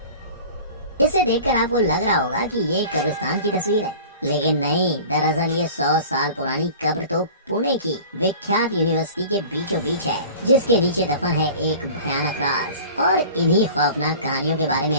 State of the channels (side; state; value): both; inverted; correlation -0.41